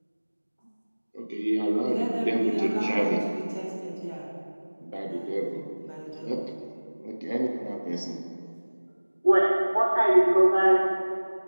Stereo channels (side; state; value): both; inverted; correlation -1.00